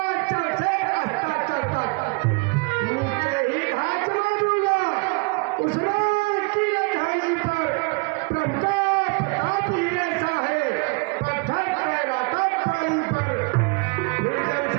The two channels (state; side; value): quieter; left; 30.7 dB